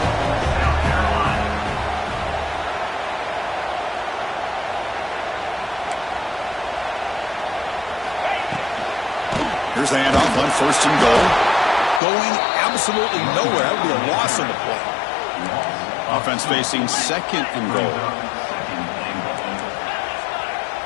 Here's the handoff on first and goal. Going absolutely nowhere. That would be a loss on the play. Offense facing second and goal.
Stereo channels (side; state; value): right; drops out; at 12.0 s